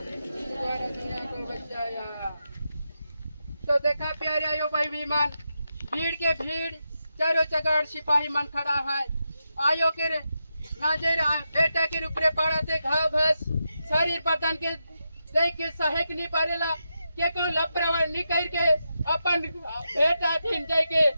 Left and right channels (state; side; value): inverted; both; correlation -0.87